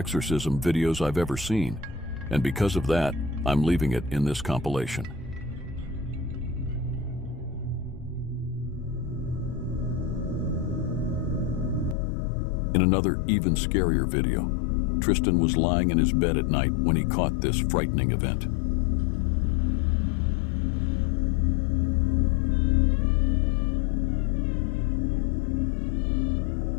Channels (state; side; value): drops out; right; at 12.0 s